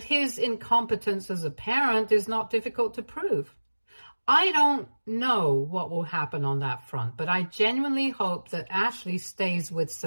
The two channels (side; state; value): both; inverted; correlation -1.00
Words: his incompetence as a parent is not difficult to prove. I don't know what will happen on that front, but I genuinely hope that Ashley stays with